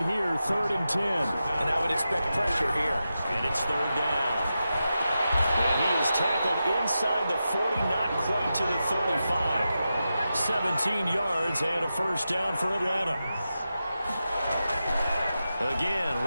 here, 3rd and 10. And I would expect pressure here. And it's 3rd down. And he is tackled inside the 40, not quite to the 35. 17 yards and a first down for Atlanta. Again,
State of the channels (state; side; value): inverted; both; correlation -0.90